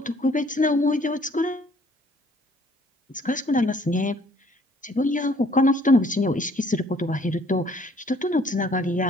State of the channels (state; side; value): normal; both; correlation 0.59